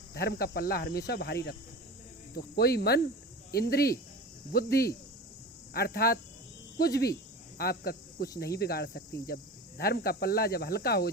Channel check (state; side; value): normal; both; correlation 0.32